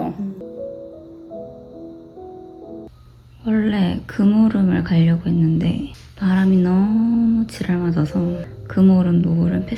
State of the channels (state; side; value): identical; both; correlation 1.00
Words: 원래 금오름을 가려고 했는데 바람이 너무 지랄 맞아서 금오름, 노을은